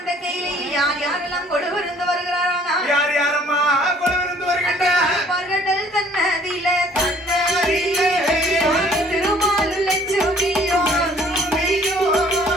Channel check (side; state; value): both; normal; correlation 0.57